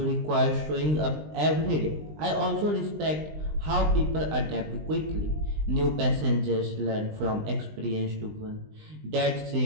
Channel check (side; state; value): left; late; 20 ms